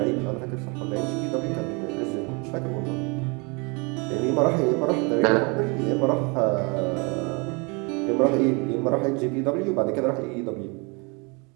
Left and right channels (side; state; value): left; quieter; 30.6 dB